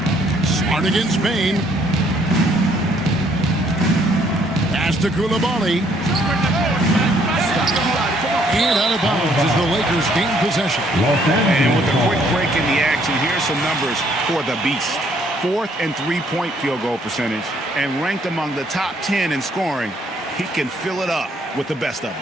Smart against Bain. Pass to Koulibaly. And out of bounds as the Lakers gain possession. And with a quick break in the action, here's some numbers for the Beast. 4th and 3-point field goal percentage, and ranked among the top 10 in scoring. He can fill it up with the best of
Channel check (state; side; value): normal; both; correlation 0.66